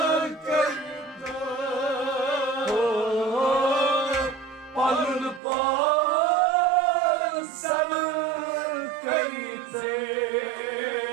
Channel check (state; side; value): drops out; left; at 5.4 s